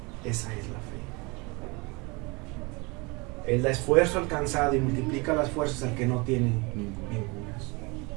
la fe. Él da esfuerzo alcanzado y multiplica las fuerzas al que no tiene ningunas.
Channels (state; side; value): quieter; left; 27.3 dB